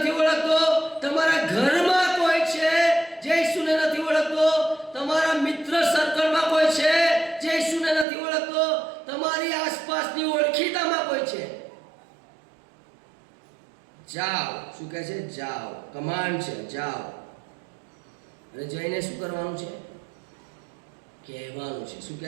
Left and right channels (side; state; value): left; drops out; at 8.1 s